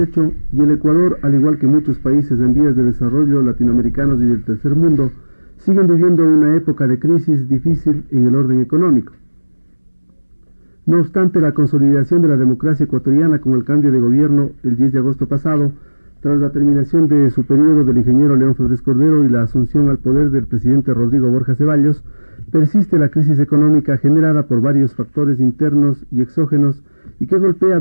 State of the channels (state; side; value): inverted; both; correlation -1.00